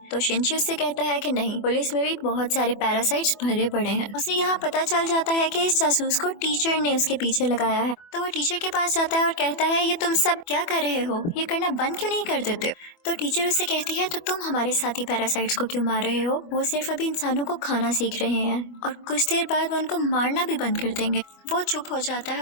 तो शिंची उससे कहता है कि नहीं, पुलिस में भी बहुत सारे पैरासाइट्स भरे पड़े हैं। उसे यहाँ पता चल जाता है कि इस जासूस को टीचर ने उसके पीछे लगाया है। तो वो टीचर के पास जाता है और कहता है ये तुम सब क्या कर रहे हो, ये करना बंद क्यों नहीं कर देते हो। तो टीचर उससे कहती है तो तुम हमारे साथी पैरासाइट्स को क्यों मार रहे हो, वो सिर्फ अभी इंसानों को खाना सीख रहे हैं और कुछ देर बाद वो उनको मारना भी बंद कर देंगे। वो चुप हो जाता है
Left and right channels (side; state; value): right; late; 24 ms